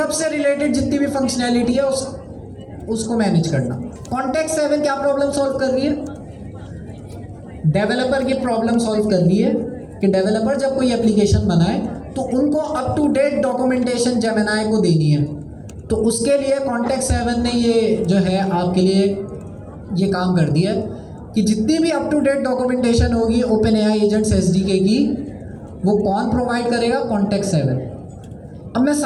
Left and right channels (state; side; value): identical; both; correlation 1.00